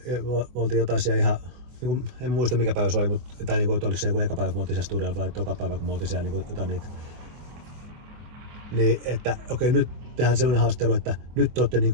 me oltiin jotain siellä ihan, en muista mikä päivä se oli, mutta tai että oliko se joku eka päivä, kun me oltiin siellä studiolla vai toka päivä, kun me oltiin siellä jotain niitä. Niin, että okei, nyt tehdään semmoinen haastattelu, että nyt te olette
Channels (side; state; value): left; late; 24 ms